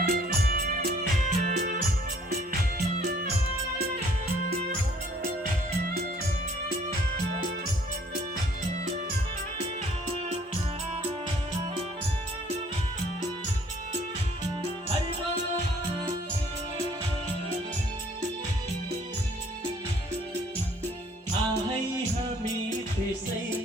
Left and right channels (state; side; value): normal; both; correlation 0.59